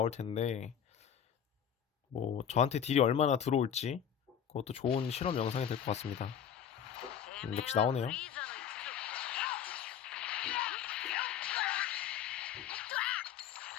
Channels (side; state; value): right; quieter; 8.7 dB